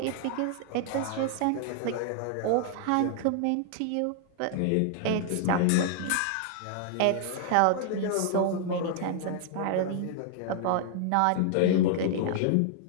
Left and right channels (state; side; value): different; both; correlation -0.01